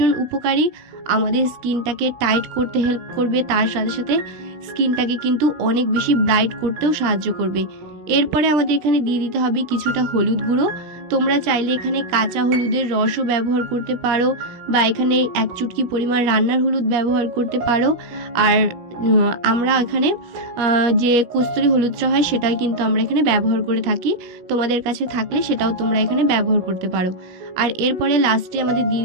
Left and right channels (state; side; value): late; left; 17 ms